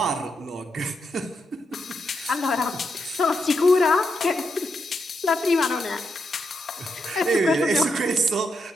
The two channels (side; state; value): both; normal; correlation 0.82